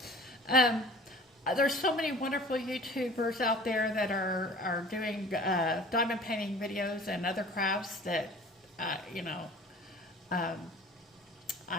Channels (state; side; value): normal; both; correlation 0.45